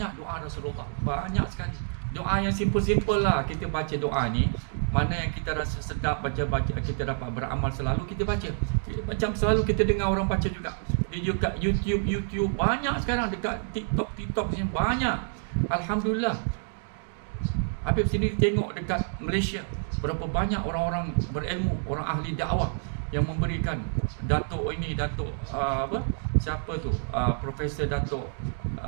doa Rasulullah, banyak sekali. Doa yang simple-simple lah, kita baca doa ni, mana yang kita rasa sedap baca, kita dapat beramal selalu kita baca. Macam selalu kita dengar orang baca juga. Di dekat YouTube banyak sekarang, dekat TikTok ni banyak. Alhamdulillah. Habib sini tengok dekat Malaysia berapa banyak orang-orang berilmu, orang ahli dakwah yang memberikan. Datuk siapa tu, Profesor Datuk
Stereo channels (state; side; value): silent; left; digital silence